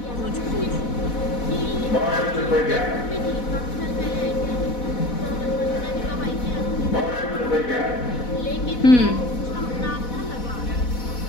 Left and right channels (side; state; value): right; late; 4.1 ms